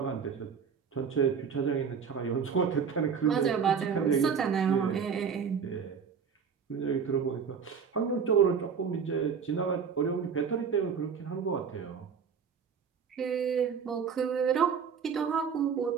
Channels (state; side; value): quieter; left; 6.6 dB